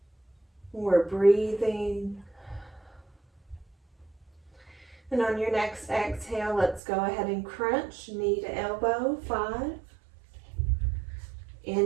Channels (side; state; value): left; drops out; at 6.8 s